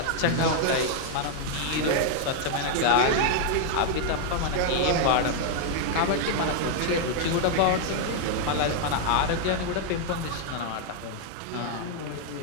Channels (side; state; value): both; different; correlation 0.00